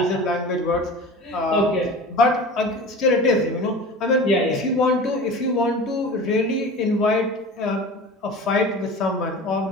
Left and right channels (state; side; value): normal; both; correlation 0.35